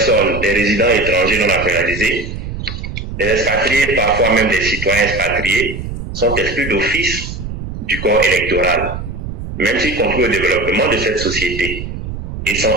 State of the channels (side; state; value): right; noise; rumble, 8 dB below the sound